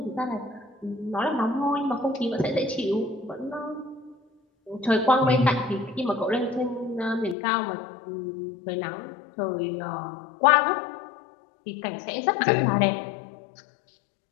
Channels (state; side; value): drops out; right; at 7.4 s